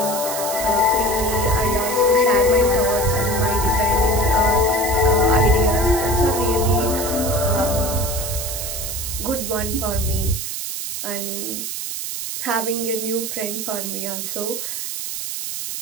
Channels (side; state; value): right; noise; hiss, 5 dB below the sound